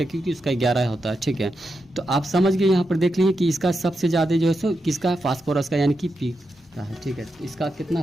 क्योंकि उसका 11 होता है, ठीक है। तो आप समझ गए, यहाँ पर देख लीजिए कि इसका सबसे ज़्यादा जो है सो किसका है, फास्फोरस का, यानी कि P का है, ठीक है। इसका कितना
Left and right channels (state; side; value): normal; both; correlation 0.86